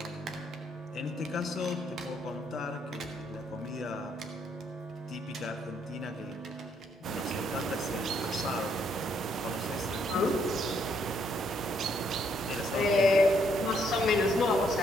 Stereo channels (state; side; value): normal; both; correlation 0.71